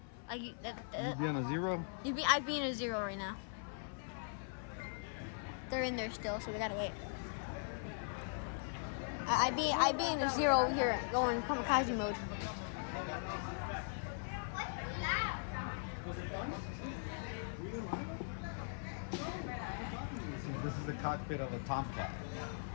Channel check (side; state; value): right; silent; 51 dB below the other